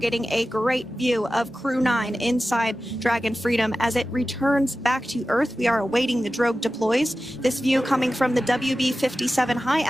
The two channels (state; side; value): normal; both; correlation 0.95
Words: a great view of Crew 9 inside Dragon Freedom as it returns back to Earth. We are awaiting the drogue deploys. This view coming from the WB-57 high